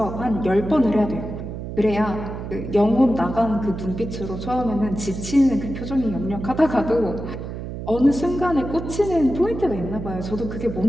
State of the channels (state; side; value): noise; right; hum, 8 dB below the sound